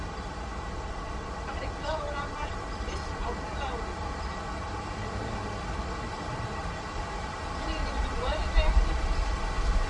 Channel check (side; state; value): both; identical; correlation 1.00